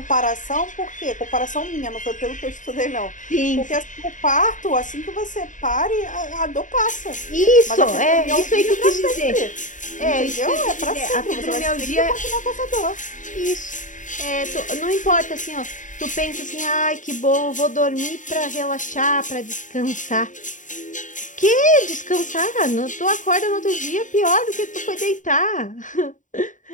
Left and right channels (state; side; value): late; right; 0.37 ms